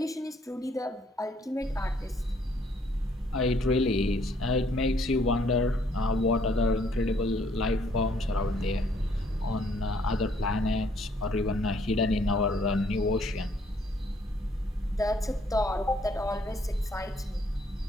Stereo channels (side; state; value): both; normal; correlation 0.66